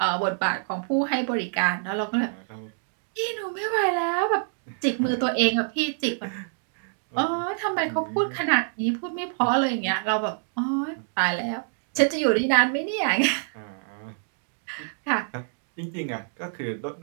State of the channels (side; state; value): left; silent; digital silence